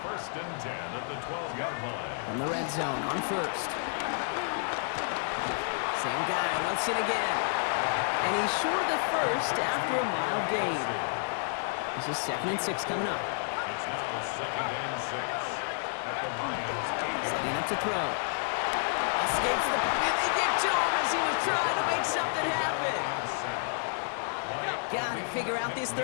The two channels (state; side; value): silent; right; digital silence